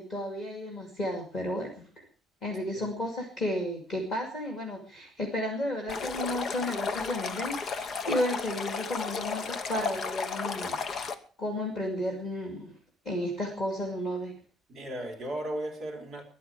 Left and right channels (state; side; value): normal; both; correlation 0.61